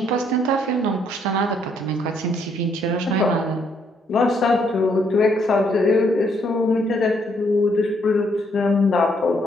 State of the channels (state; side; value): normal; both; correlation 0.71